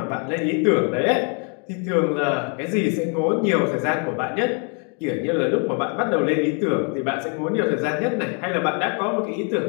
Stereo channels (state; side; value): quieter; right; 38.9 dB